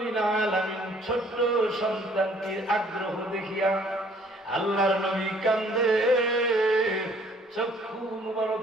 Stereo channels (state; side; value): normal; both; correlation 0.59